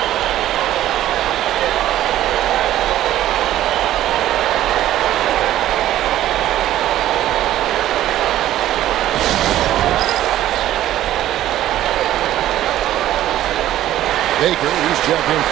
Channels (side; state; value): left; quieter; 13.3 dB